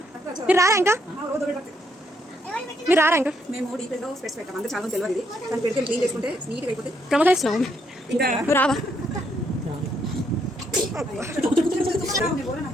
మేము డీప్గా స్పెట్స్ పెట్టాం, అందరూ చాలా తెలియదు. దాన్ని పెడితే క్లీన్ చేసుకుంటే నీట్గా అయిపోతే ప్రమోట్ చేస్తున్నావు. నువ్వు రావా?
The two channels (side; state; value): both; normal; correlation 0.74